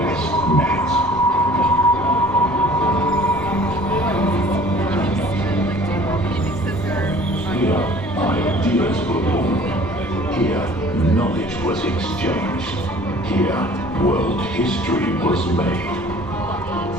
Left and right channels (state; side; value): normal; both; correlation 0.50